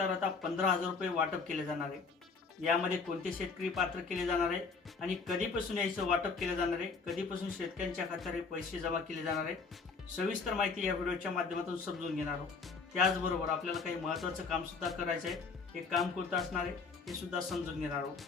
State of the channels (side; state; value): right; quieter; 4.7 dB